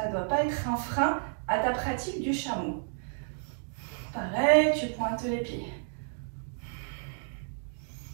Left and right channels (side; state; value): left; silent; digital silence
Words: ne doit pas être un frein à ta pratique du chameau. Pareil, tu pointes les pieds.